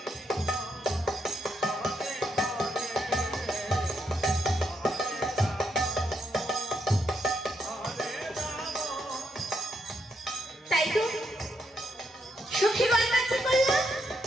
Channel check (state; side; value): normal; both; correlation 0.79